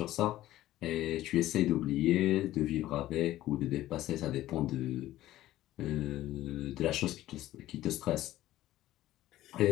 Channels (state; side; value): quieter; right; 14.8 dB